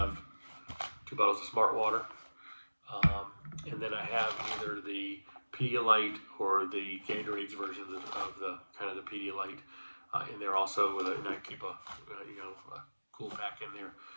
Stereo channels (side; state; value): both; inverted; correlation -1.00